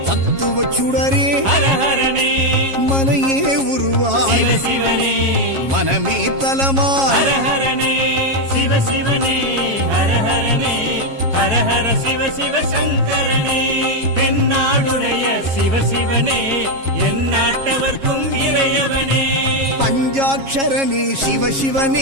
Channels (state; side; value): late; left; 7.4 ms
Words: தத்துவ சுடரே ஹரஹரனே, மனையே உருவாய் சிவசிவனே, மனமே தலமாய். ஹரஹரனே சிவசிவனே, ஹரஹரனே, ஹரஹர சிவ சிவ சங்கரனே, தென்னாடுடைய சிவசிவனே, என் நாட்டவர்க்கும் இறையவனே. பஞ்சாட்சரனே